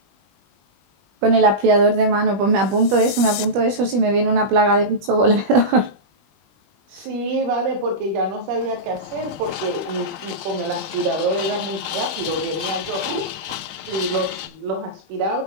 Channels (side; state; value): left; late; 21 ms